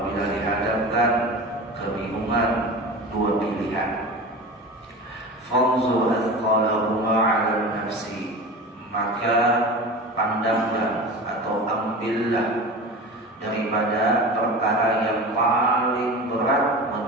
dihadapkan kebingungan dua pilihan, fanzur athqalahuma 'ala nafsi, maka pandanglah atau ambillah daripada perkara yang paling berat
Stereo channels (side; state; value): both; normal; correlation 0.32